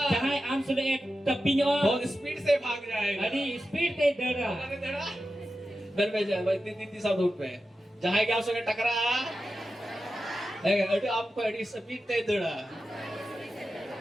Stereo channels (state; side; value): normal; both; correlation 0.92